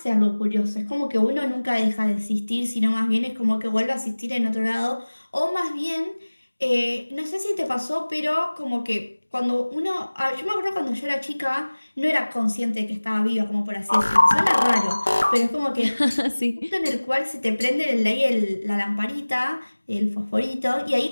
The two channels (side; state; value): both; inverted; correlation -1.00